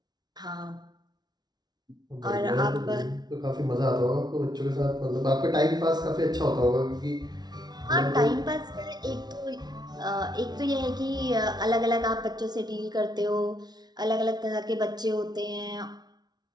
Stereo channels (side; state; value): left; late; 0.19 ms